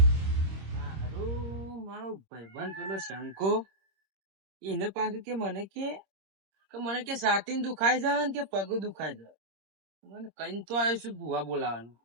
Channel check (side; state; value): left; late; 26 ms